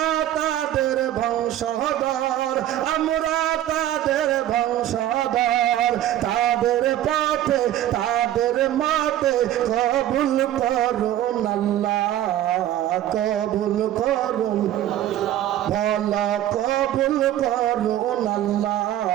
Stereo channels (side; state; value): left; quieter; 12.5 dB